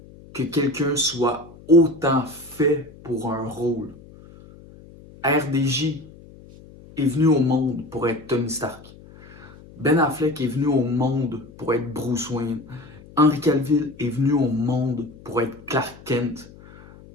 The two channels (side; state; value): left; noise; hum, 21 dB below the sound